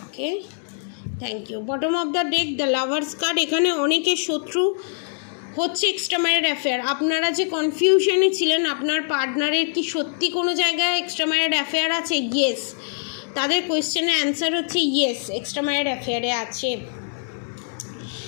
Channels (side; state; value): right; silent; digital silence